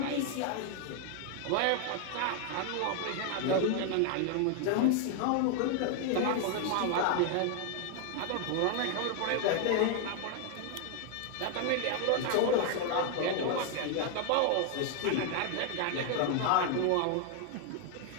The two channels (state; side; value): different; both; correlation 0.00